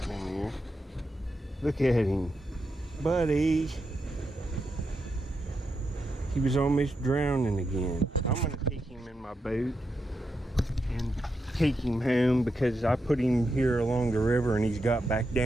in here. Look at him. Buddy. He was almost drowning again. I'm going to take him in my boat and take him home because I put him here along the river and he's got back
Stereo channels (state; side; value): normal; both; correlation 0.85